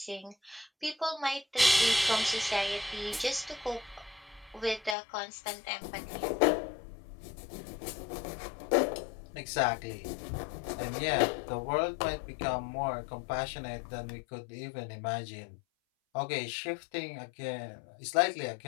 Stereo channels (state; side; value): drops out; right; at 5.0 s